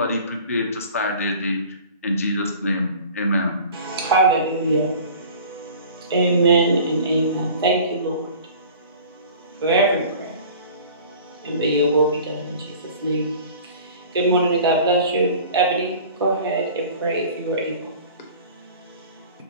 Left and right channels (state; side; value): inverted; both; correlation -0.43